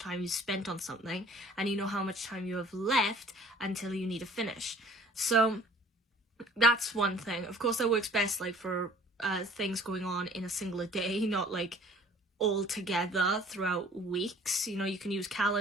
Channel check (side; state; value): both; normal; correlation 0.52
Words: you spent on something and you know how much time you have left until you need to finish. So that's one thing. Of course, that works best for things going on in a singular day, not all together throughout weeks. You can use